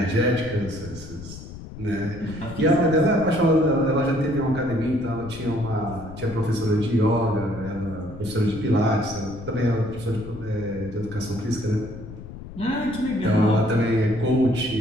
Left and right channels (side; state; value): left; noise; rumble, 13 dB below the sound